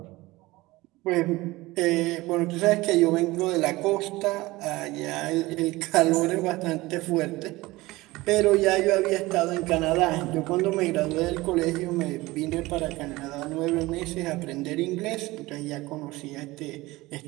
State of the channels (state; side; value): quieter; left; 20.1 dB